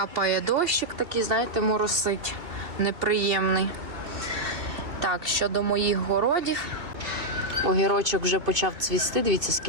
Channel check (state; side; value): late; left; 2.6 ms